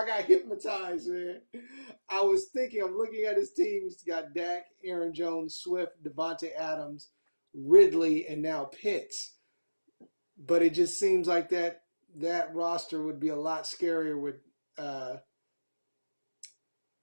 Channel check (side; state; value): both; inverted; correlation -1.00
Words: got hypnotized, man. I was thinking, I'm looking at his team. He's got Dak, Aaron Jones, Swift, Devontae Adams, Ridley, and now Pitts. But it just seems like that roster would be a lot scarier with